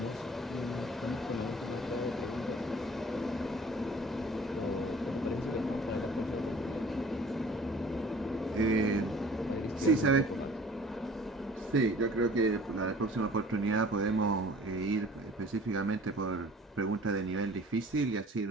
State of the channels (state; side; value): normal; both; correlation 0.49